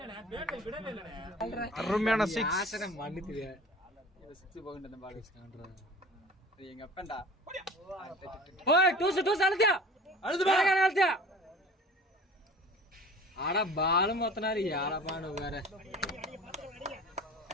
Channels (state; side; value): normal; both; correlation 0.42